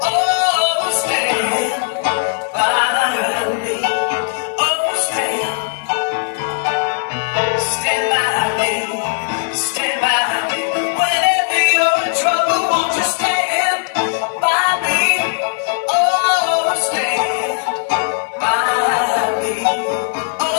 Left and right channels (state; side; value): silent; right; digital silence